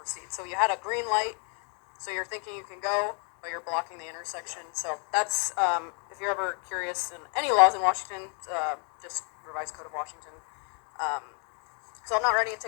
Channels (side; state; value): right; quieter; 39.2 dB